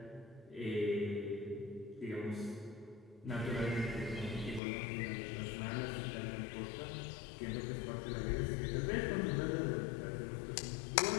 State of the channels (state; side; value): drops out; right; at 4.6 s